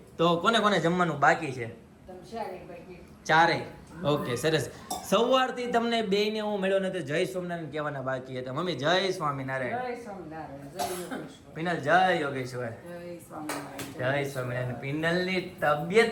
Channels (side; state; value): both; identical; correlation 1.00